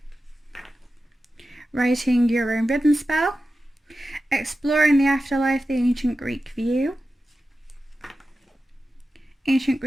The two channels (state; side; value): normal; both; correlation 0.93